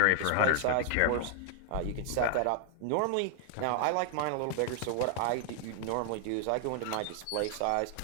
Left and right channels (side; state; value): both; different; correlation 0.00